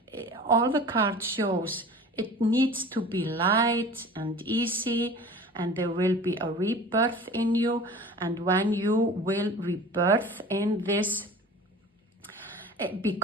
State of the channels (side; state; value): both; normal; correlation 0.41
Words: all the cards shows it needs to be light and easy, and there will be a rebirth in you. And when you will rebirth in this,